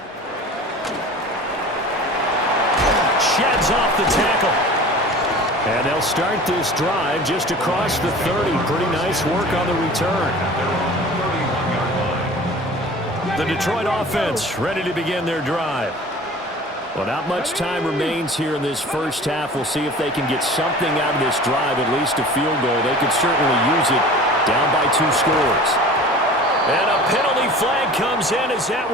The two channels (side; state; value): both; normal; correlation 0.41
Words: Sheds off the tackle. And they'll start this drive just across the 30. Pretty nice work on the return. The Detroit offense ready to begin their drive. Well, not much time remains here in this first half. We'll see if they can get something out of this drive, at least a field goal. They could certainly use it down by 2 scores. And a penalty flag comes in as that